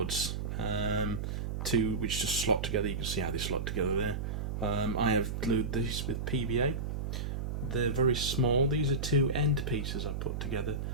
which just slot together. You can see how they slot together there. I have glued these with PVA. They're very small. These are two end pieces I put together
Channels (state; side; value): noise; right; hum, 3 dB below the sound